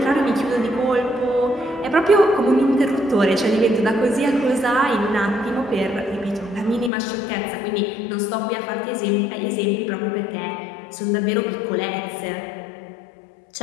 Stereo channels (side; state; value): right; drops out; at 6.9 s